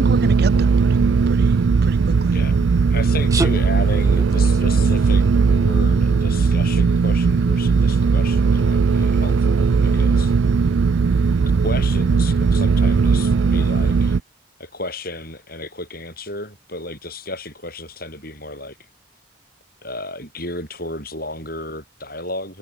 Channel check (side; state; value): left; quieter; 4.3 dB